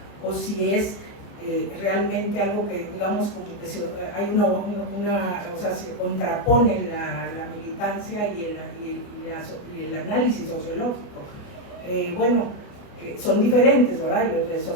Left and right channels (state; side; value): late; right; 29 ms